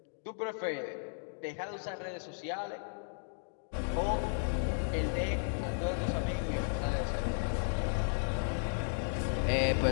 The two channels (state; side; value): silent; right; digital silence